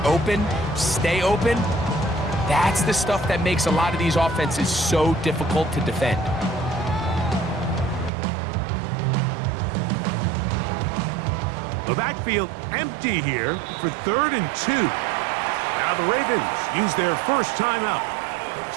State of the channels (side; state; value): left; drops out; at 8.1 s